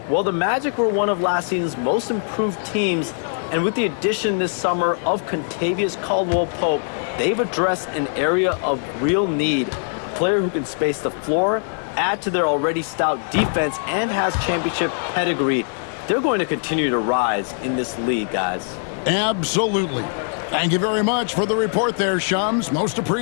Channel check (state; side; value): silent; right; 57 dB below the other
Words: well the Magic were one of last season's most improved teams, and with the addition this summer of Kentavious Caldwell-Pope, they've addressed an area of real need. A player who can space the floor, add to their already stout defense, and has championship pedigree. They're going to continue to rise in this league, guys. Absolutely. Thank you very much for the report there, Shams. Most